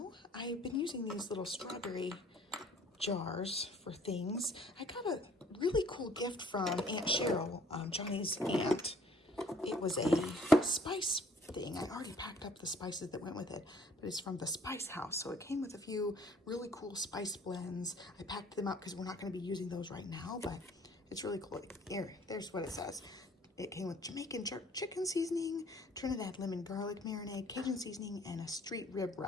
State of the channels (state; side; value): normal; both; correlation 0.57